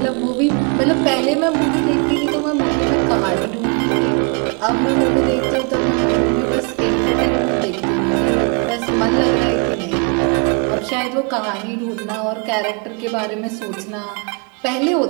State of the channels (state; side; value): quieter; left; 35.0 dB